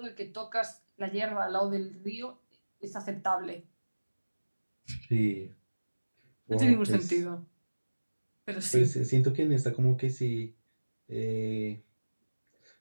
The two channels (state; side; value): inverted; both; correlation -1.00